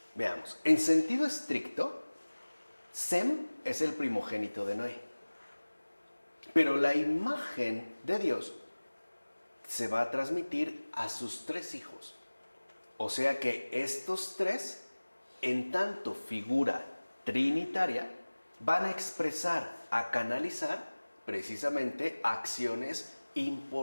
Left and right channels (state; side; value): inverted; both; correlation -1.00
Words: Veamos, en sentido estricto, Sem es el primogénito de Noé. Pero la imagen de Dios se va a transmitir a sus tres hijos. O sea que estos tres, en tanto figura trinitaria, van a expresar, a canalizar precisamente acciones